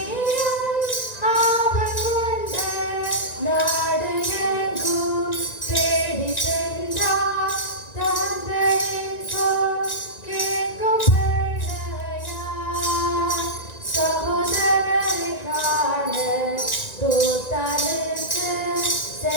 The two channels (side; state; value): right; late; 1.9 ms